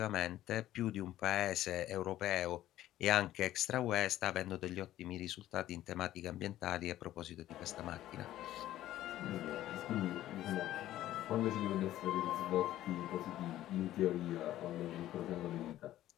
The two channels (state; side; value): quieter; right; 13.7 dB